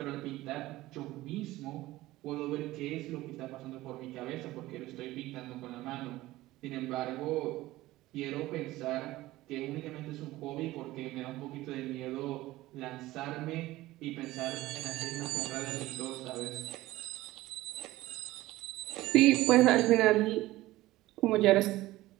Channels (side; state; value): left; quieter; 17.3 dB